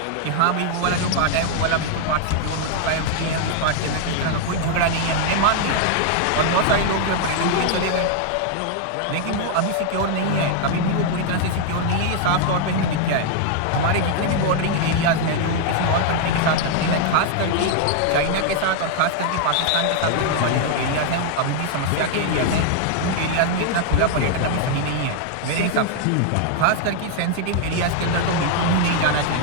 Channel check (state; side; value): different; both; correlation 0.00